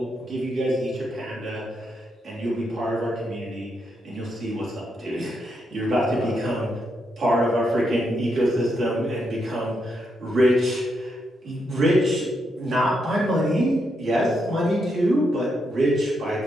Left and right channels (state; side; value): normal; both; correlation 0.81